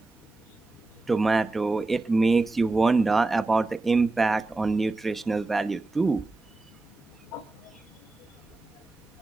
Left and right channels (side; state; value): left; quieter; 3.3 dB